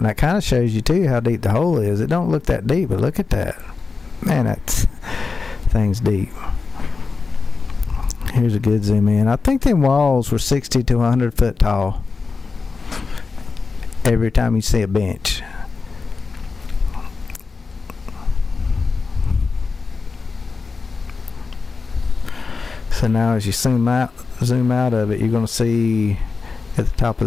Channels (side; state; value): right; quieter; 4.5 dB